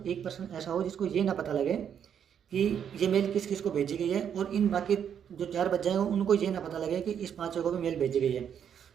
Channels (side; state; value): left; quieter; 8.4 dB